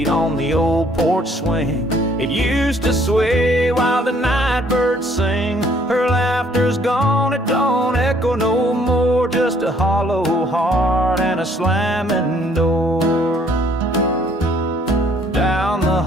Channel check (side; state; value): both; normal; correlation 0.62